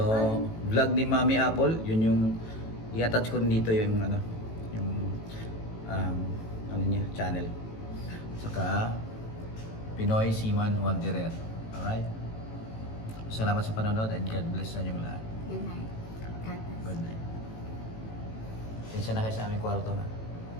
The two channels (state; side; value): late; right; 18 ms